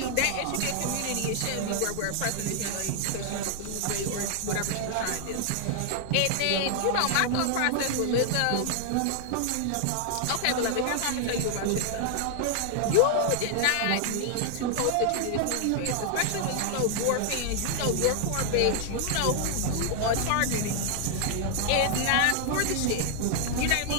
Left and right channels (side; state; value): both; different; correlation 0.00